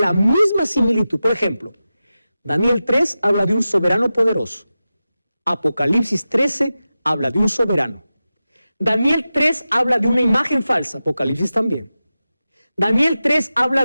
misma similitud. Por ejemplo, Daniel 3 habla de un soberano poderoso. Apocalipsis 13 habla de un soberano. Daniel 3 habla de una imagen falsa, Apocalipsis también. Daniel 3 habla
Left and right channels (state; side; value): inverted; both; correlation -0.94